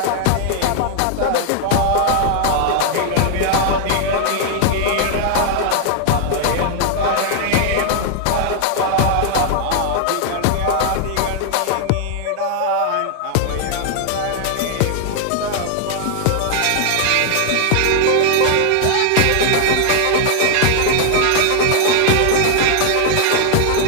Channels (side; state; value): both; different; correlation 0.00